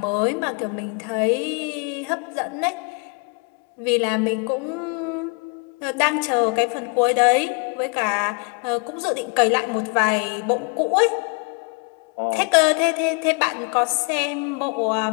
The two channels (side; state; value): right; quieter; 34.0 dB